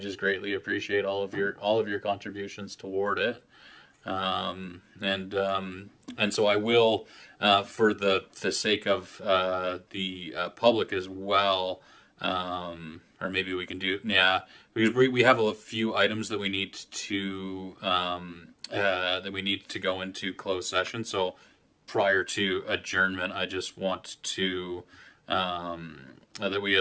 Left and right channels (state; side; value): identical; both; correlation 1.00